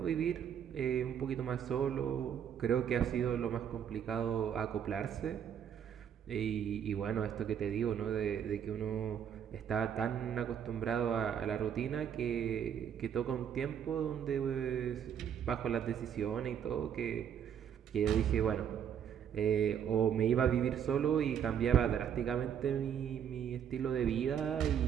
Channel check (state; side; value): quieter; left; 8.7 dB